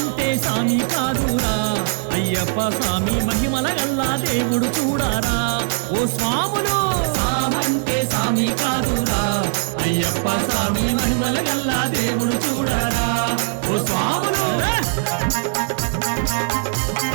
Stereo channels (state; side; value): silent; left; digital silence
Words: సామి కాదురా అయ్యప్ప స్వామి మహిమల గల్లా దేవుడు చూడారా ఓ స్వాములు సామంటే సామి కాదురా అయ్యప్ప స్వామి మహిమల గల్లా దేవుడు చూడరా ఓ స్వాములు